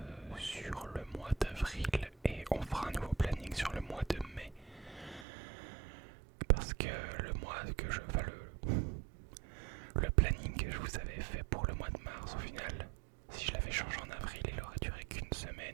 sur le mois d'avril et on fera un nouveau planning sur le mois de mai. Parce que le planning que je vous avais fait pour le mois de mars, au final, si je l'avais changé en avril, il aurait duré qu'une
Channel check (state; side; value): drops out; left; at 5.2 s